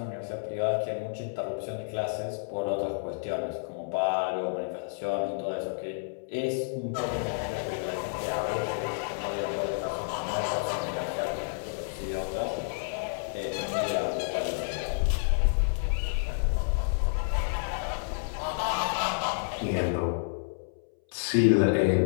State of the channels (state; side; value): silent; right; 58 dB below the other